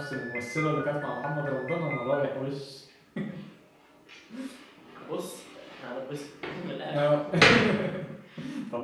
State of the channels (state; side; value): identical; both; correlation 1.00